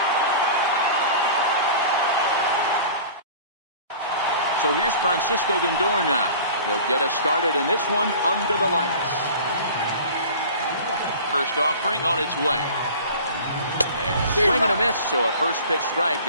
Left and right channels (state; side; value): inverted; both; correlation -0.41